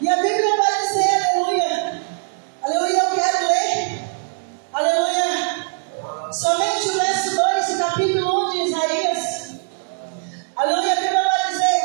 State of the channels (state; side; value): silent; left; digital silence